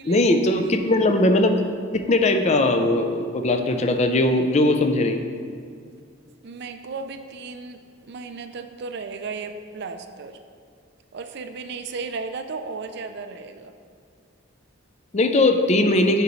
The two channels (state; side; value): normal; both; correlation 0.39